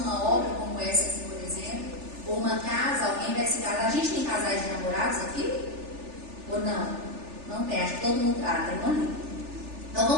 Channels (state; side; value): late; left; 3.4 ms